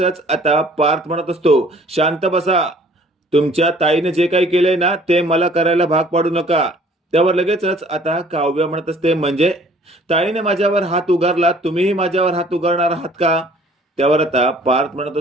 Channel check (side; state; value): both; normal; correlation 0.54